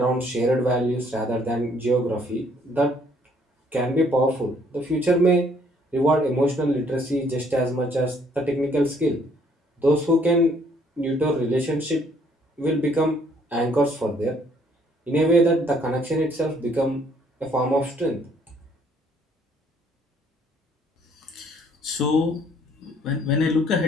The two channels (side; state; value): both; normal; correlation 0.64